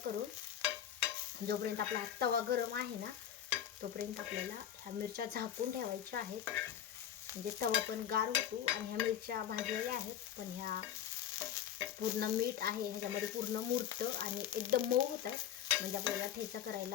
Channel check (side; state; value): right; quieter; 10.0 dB